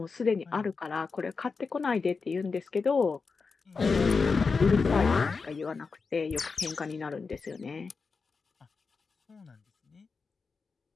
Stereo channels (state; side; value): quieter; right; 4.7 dB